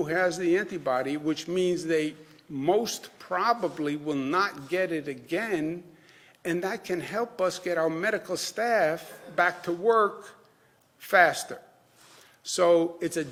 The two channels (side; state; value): both; identical; correlation 1.00